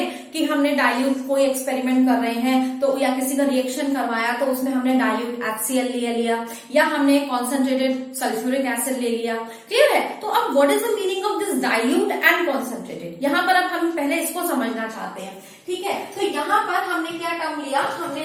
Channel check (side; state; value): both; identical; correlation 1.00